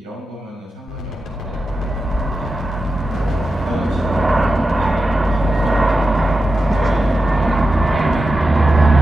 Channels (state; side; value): normal; both; correlation 0.90